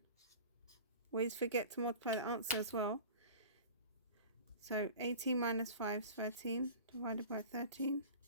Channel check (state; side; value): inverted; both; correlation -0.38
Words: Always forget to multiply the answer as well. So 18 minus 5 is 13 divided by 13.